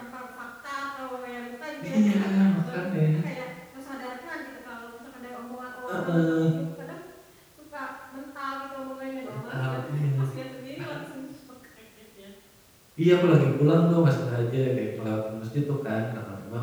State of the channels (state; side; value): identical; both; correlation 1.00